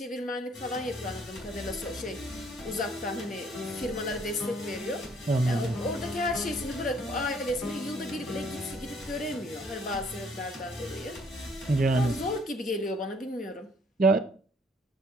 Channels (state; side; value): normal; both; correlation 0.62